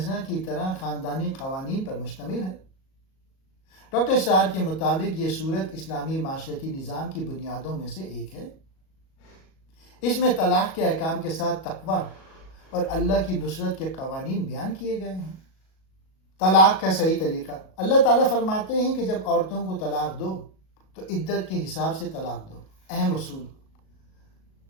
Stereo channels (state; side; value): late; right; 37 ms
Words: کی طرح خاندانی قوانین پر مشتمل ہے۔ ڈاکٹر اسرار کے مطابق یہ سورت اسلامی معاشرتی نظام کی بنیادوں میں سے ایک ہے۔ اس میں طلاق کے احکام کے ساتھ تقوی اور اللہ کی نصرت کے قوانین بیان کیے گئے ہیں۔ طلاق کا صحیح طریقہ، اللہ تعالیٰ فرماتے ہیں کہ جب عورتوں کو طلاق دو تو عدت کے حساب سے طلاق دو۔ اہم اصول،